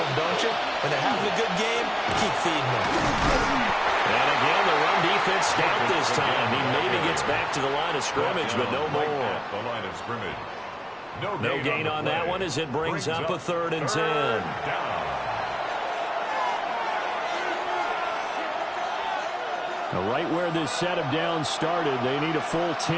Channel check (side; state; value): both; identical; correlation 1.00